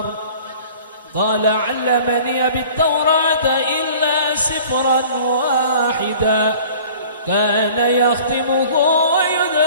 قال علمني بالتوراة إلا سفرا واحدا كان يختمه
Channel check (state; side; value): inverted; both; correlation -0.47